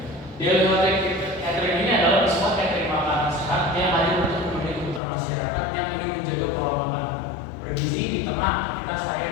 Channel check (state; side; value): drops out; right; at 5.0 s